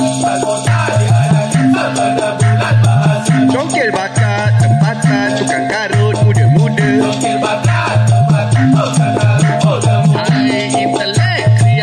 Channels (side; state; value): both; identical; correlation 1.00